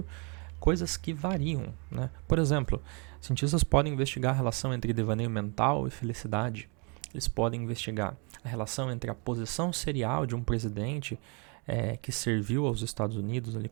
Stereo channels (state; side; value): quieter; left; 33.4 dB